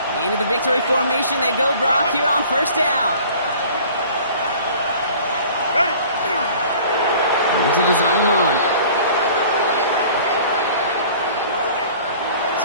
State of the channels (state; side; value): inverted; both; correlation -0.47